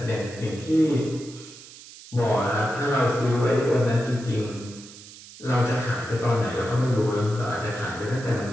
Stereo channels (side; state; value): right; noise; hiss, 18 dB below the sound